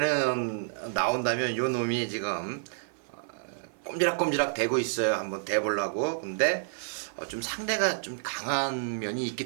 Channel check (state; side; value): silent; left; 56 dB below the other